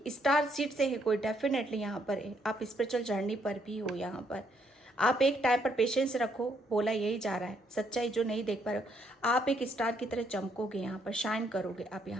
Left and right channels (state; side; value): normal; both; correlation 0.72